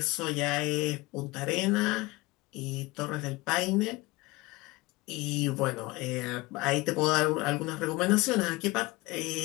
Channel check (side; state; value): right; quieter; 22.0 dB